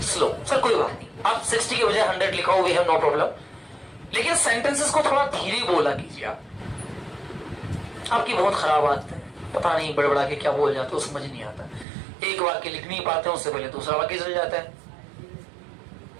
slow. Sir कोई बात नहीं, आप 60 के बजाय 100 लिखाओ, वी हैव नो प्रॉब्लम, लेकिन सेंटेंसेस को थोड़ा धीरे बोला कीजिए। आपकी बहुत खराब आदत है, पता नहीं बड़बड़ा के क्या बोल जाते हो, समझ नहीं आता। एक वाक्य लिख नहीं पाते, उससे पहले दूसरा वाक्य चल जाता है।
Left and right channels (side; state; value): left; drops out; at 11.9 s